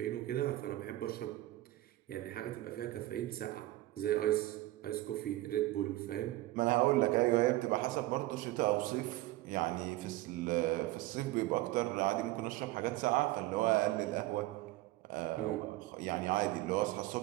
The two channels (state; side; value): quieter; left; 17.3 dB